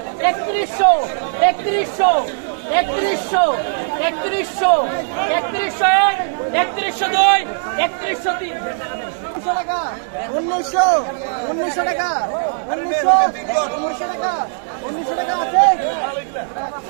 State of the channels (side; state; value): left; silent; digital silence